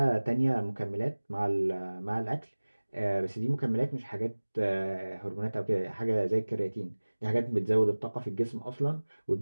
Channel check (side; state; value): both; inverted; correlation -1.00